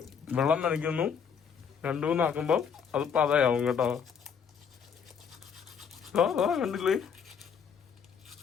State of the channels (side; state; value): right; quieter; 6.9 dB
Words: വെള്ളം നനയ്ക്കുന്നു, 2-3 ആക്കുമ്പോൾ അത് പതയാവും കേട്ടോ. കണ്ടില്ലേ